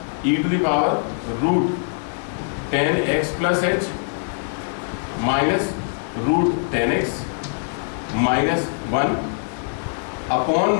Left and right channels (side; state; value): right; silent; digital silence